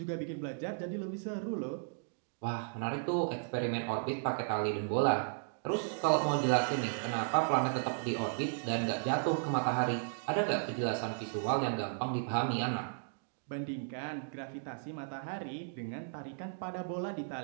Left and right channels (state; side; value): silent; left; digital silence